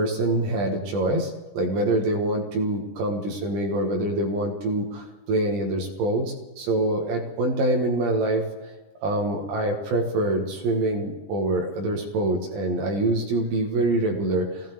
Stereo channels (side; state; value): left; late; 20 ms